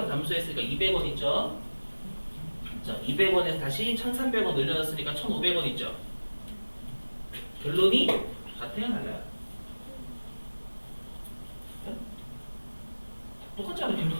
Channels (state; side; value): inverted; both; correlation -1.00